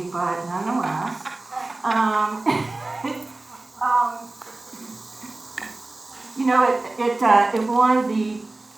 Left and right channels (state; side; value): quieter; left; 3.0 dB